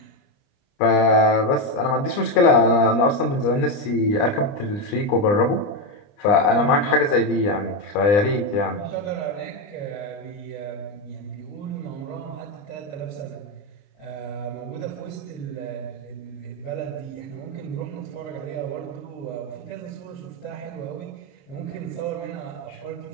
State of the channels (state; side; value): late; right; 30 ms